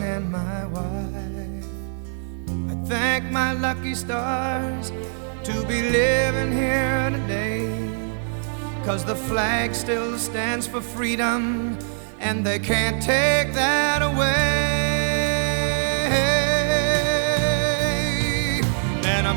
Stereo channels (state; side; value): silent; left; digital silence